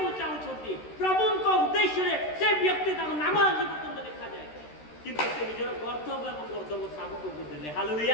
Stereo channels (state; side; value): late; right; 13 ms